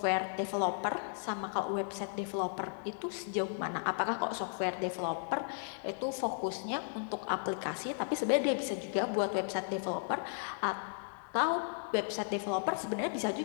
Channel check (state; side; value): silent; right; 54 dB below the other